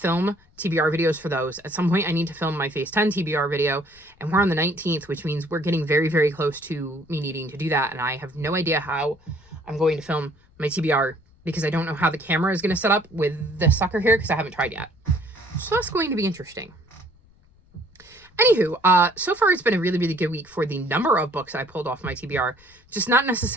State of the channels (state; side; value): noise; left; rumble, 29 dB below the sound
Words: TBR videos for those. At some point, I need to film my Phase 10 TBR video, and we're on the 19th, which means we're getting very, very close to me needing to do that. And I have no idea how I'm going to film my TBR, because I don't know how the camera is going to set up with the sucker here, because I haven't tried yet. So that's going to be interesting. Anywho, so far it's been a really, really good week for the number of books I pulled off my TBR, just not